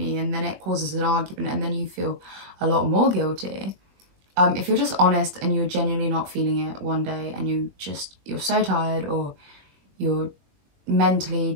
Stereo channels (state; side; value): late; left; 21 ms